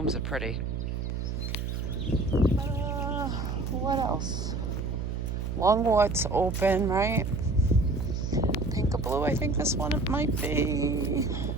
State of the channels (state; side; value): noise; right; hum, 3 dB below the sound